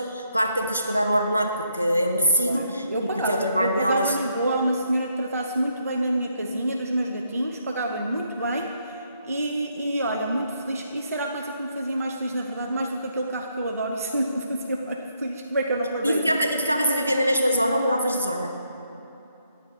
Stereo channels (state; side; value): inverted; both; correlation -0.75